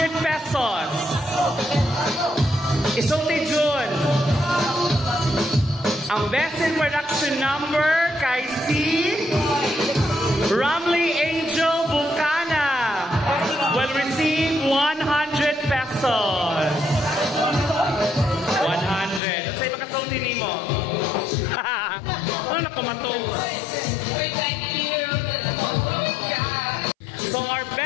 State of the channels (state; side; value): drops out; right; at 19.2 s